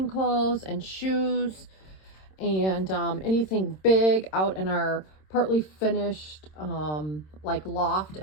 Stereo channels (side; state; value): right; late; 26 ms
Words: clothes and shoes and anything big out in our partly finished like loft